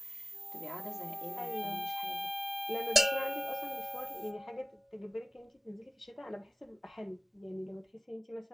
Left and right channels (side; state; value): both; normal; correlation 0.97